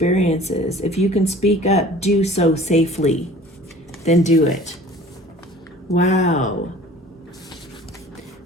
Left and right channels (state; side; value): normal; both; correlation 0.47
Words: if you can speak up, do so safely. Then do it. Wow.